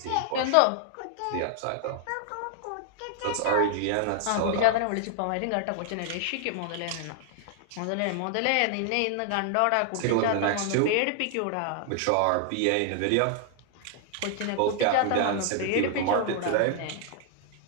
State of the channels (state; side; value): different; both; correlation -0.01